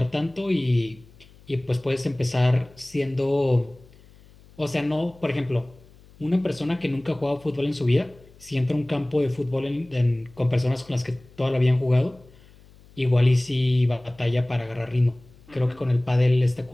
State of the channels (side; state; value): left; noise; hum, 26 dB below the sound